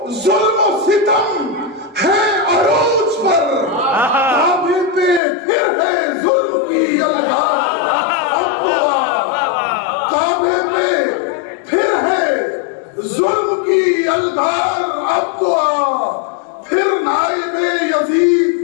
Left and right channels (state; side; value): drops out; right; at 5.2 s